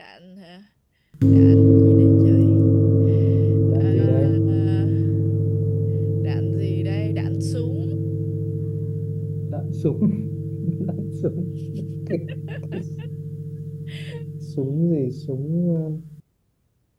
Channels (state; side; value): identical; both; correlation 1.00